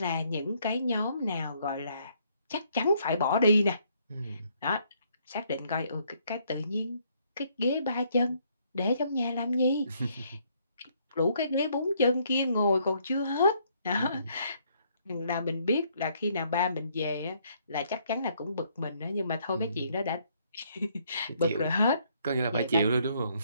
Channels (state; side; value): inverted; both; correlation -0.68